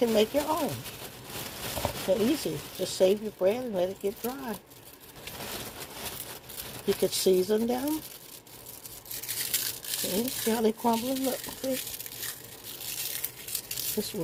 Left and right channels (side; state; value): both; identical; correlation 1.00